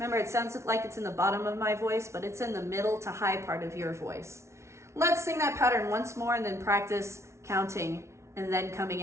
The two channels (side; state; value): left; late; 0.13 ms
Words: it sounds like it's in the bottom of my voice, but it's in the middle to high part of your voice. Let's sing that pattern once more and then practice counting and then coming